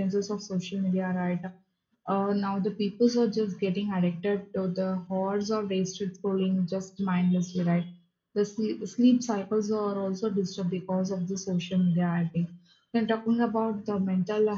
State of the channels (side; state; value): both; identical; correlation 1.00